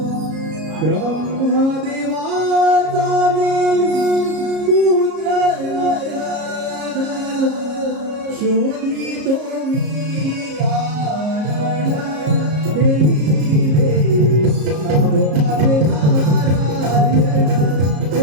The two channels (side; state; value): left; late; 33 ms